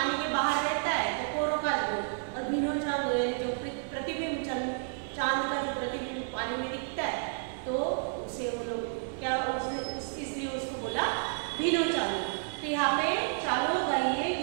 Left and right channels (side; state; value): left; silent; 57 dB below the other